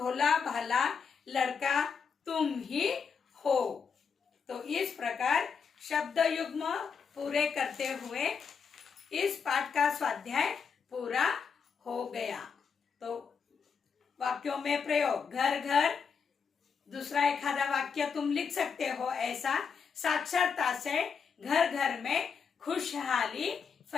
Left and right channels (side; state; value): right; quieter; 6.0 dB